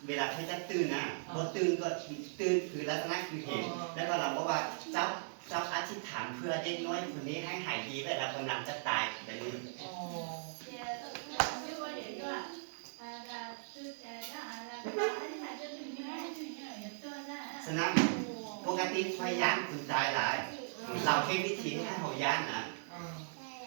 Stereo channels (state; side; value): silent; left; 52 dB below the other